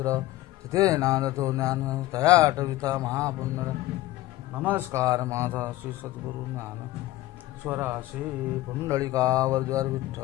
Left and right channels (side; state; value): right; quieter; 16.5 dB